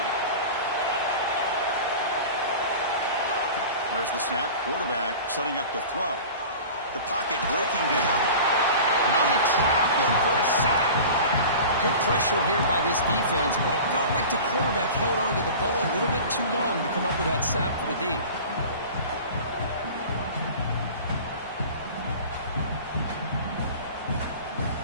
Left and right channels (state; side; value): inverted; both; correlation -0.37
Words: There's the snap. Quarterback setting up to throw. The pocket breaking down. Now they trap him for a sack. Good pressure here by this defense, but it felt like the quarterback held on to the ball a little bit too long to come up with that sack for the D.